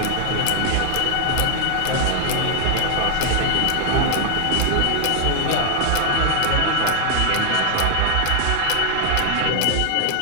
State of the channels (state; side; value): different; both; correlation 0.00